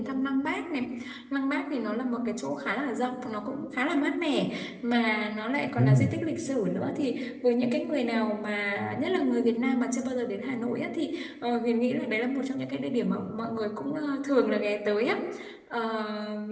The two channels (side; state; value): both; identical; correlation 1.00